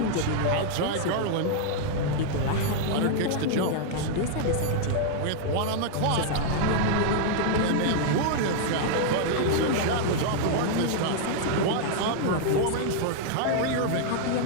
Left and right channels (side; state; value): both; different; correlation -0.01